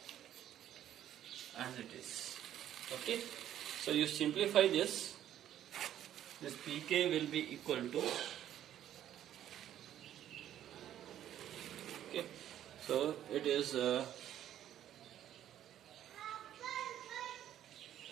as it is. Okay, so you simplify this pk will be equal to, okay, so it is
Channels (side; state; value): left; quieter; 11.4 dB